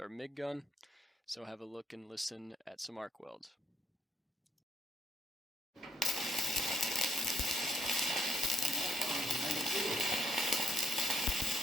MIG gun. So have a look and listen at some arc welds.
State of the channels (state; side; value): normal; both; correlation 0.70